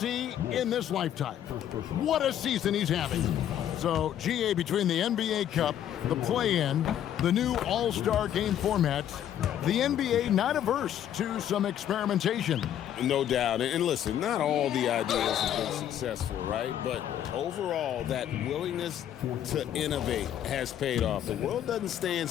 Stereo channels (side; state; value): right; quieter; 10.6 dB